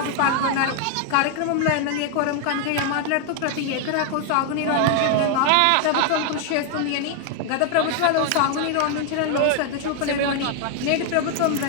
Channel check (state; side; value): different; both; correlation 0.00